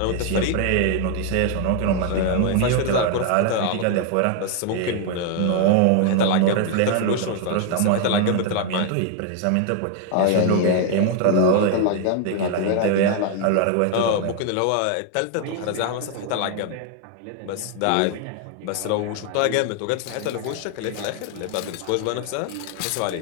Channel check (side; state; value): both; different; correlation 0.00